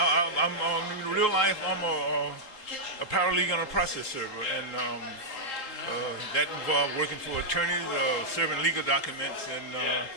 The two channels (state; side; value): late; right; 3.7 ms